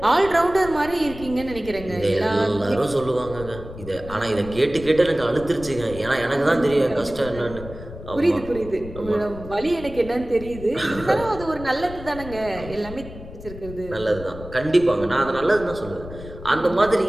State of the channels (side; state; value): left; noise; rumble, 13 dB below the sound